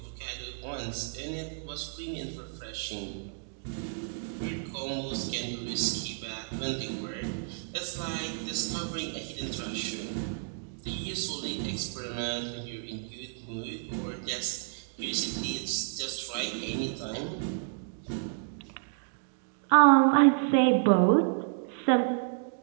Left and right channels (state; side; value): silent; left; digital silence